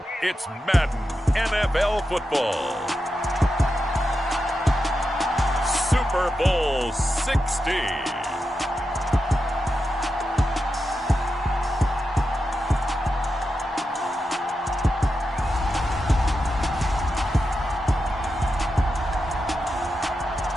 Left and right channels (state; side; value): normal; both; correlation 0.89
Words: it's Madden NFL football. Super Bowl 60.